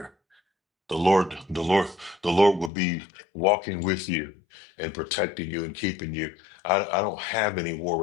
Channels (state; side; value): drops out; right; at 2.7 s